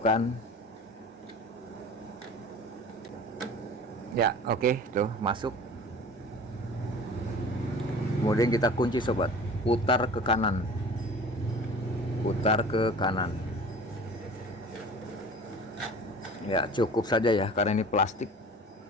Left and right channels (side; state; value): both; normal; correlation 0.41